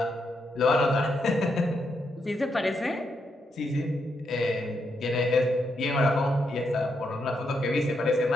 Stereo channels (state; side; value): normal; both; correlation 0.80